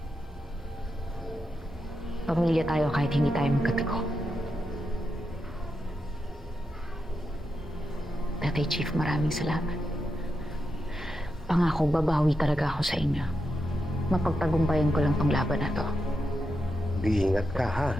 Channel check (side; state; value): both; normal; correlation 0.86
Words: Pamilya tayo kahit hindi tayo magkatago. Tatay Chief, maraming salamat. Pangako, babawi talaga ako sa inyo. Mapagtagumpayan ko lang tong laban na to. Iingat ka ha.